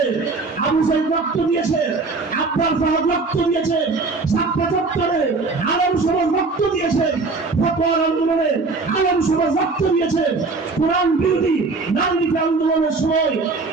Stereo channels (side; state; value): left; quieter; 3.9 dB